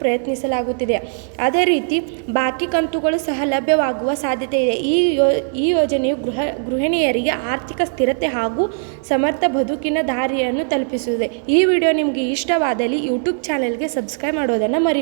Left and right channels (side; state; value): left; silent; 66 dB below the other